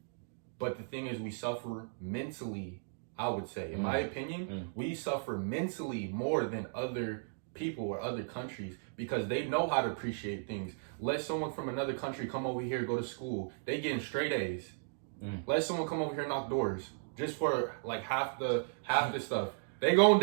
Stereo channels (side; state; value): left; silent; digital silence